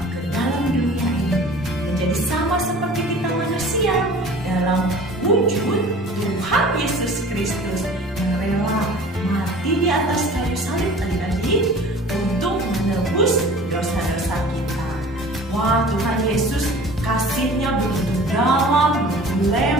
ke dalam dunia ini menjadi sama seperti kita manusia dalam wujud Tuhan Yesus Kristus yang rela mati di atas kayu salib adik-adik untuk menebus dosa-dosa kita. Wah, Tuhan Yesus kasihnya begitu dalam, begitu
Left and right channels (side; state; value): both; normal; correlation 0.44